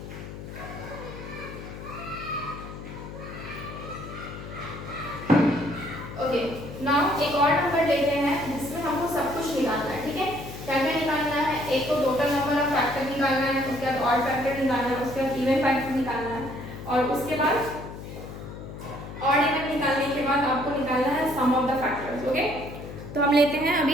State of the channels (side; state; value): left; noise; hum, 11 dB below the sound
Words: Okay, now एक और नंबर लेते हैं जिसमें हमको सब कुछ निकालना है। ठीक है, क्या क्या निकालना है, एक तो टोटल नंबर ऑफ फैक्टर निकालना है, उसके बाद ऑड फैक्टर निकालना है, उसके बाद इवन फैक्टर निकालना है, और उसके बाद ऑड इवन निकालने के बाद आपको निकालना है सम ऑफ द फैक्टर्स। ओके, तो हम लेते हैं